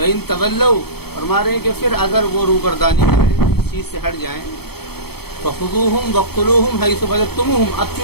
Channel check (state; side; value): late; right; 0.96 ms